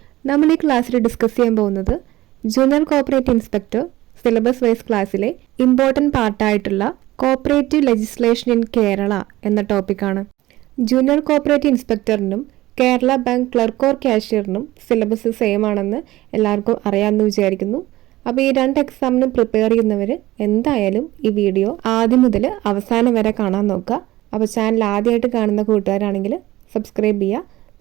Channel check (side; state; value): left; quieter; 17.1 dB